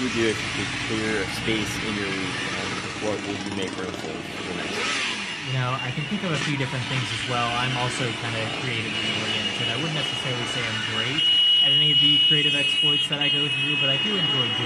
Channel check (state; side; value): identical; both; correlation 1.00